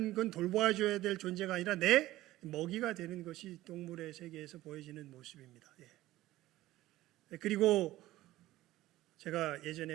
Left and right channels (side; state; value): left; quieter; 16.1 dB